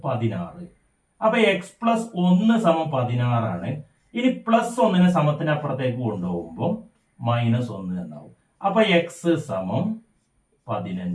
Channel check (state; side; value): identical; both; correlation 1.00